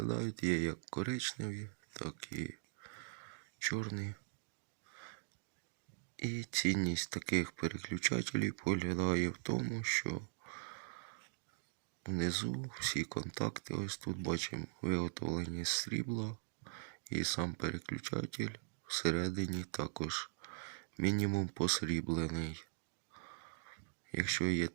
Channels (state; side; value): silent; left; digital silence